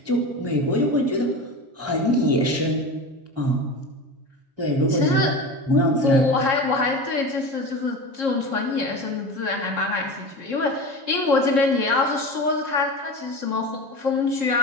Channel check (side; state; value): left; late; 7.3 ms